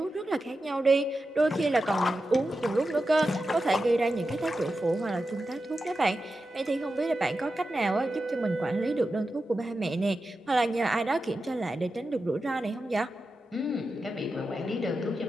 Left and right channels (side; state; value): both; normal; correlation 0.91